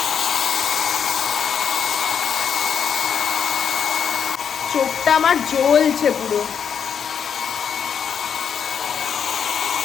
চোখটা আমার জ্বলছে পুরো,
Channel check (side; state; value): right; quieter; 7.4 dB